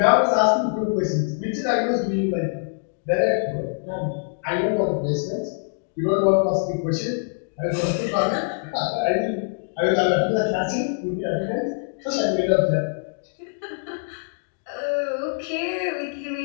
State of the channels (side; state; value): right; silent; digital silence